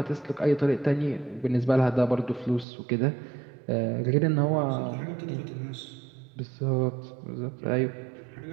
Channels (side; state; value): left; drops out; at 2.7 s